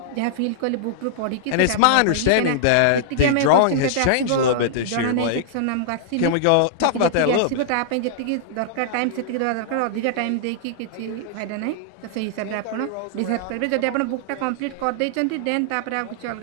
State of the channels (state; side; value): different; both; correlation -0.01